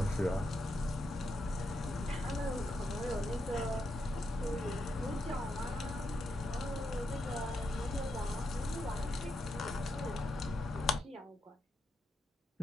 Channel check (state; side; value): normal; both; correlation 0.82